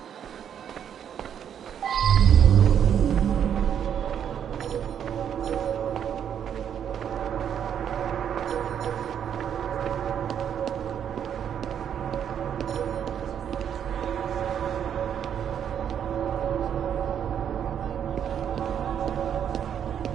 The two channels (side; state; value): left; quieter; 8.8 dB